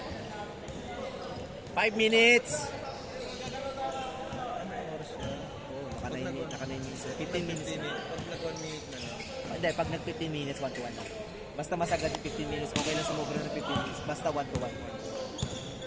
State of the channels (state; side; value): identical; both; correlation 1.00